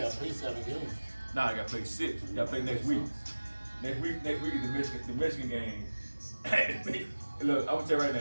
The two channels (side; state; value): both; inverted; correlation -1.00